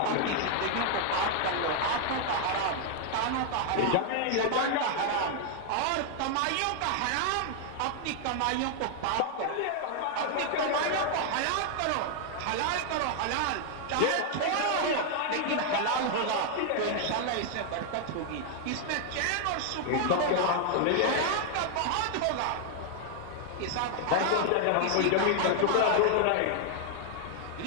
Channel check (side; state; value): both; different; correlation 0.00